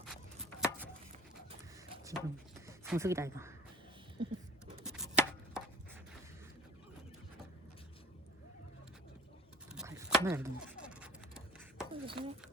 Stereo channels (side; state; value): both; normal; correlation 0.46